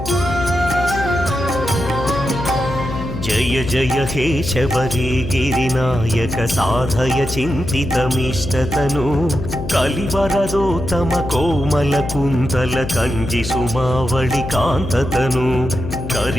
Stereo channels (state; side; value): noise; left; hum, 8 dB below the sound